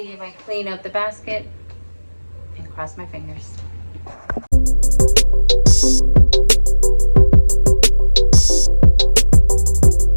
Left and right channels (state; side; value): inverted; both; correlation -1.00